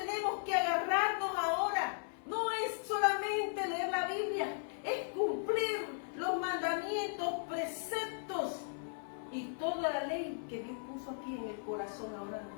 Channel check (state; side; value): silent; right; 53 dB below the other